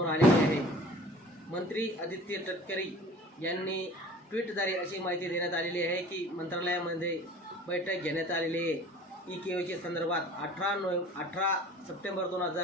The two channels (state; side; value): normal; both; correlation 0.45